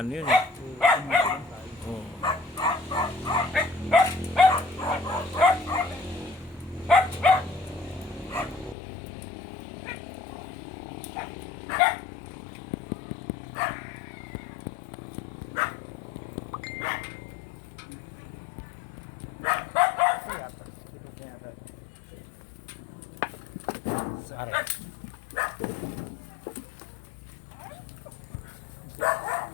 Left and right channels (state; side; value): drops out; right; at 8.8 s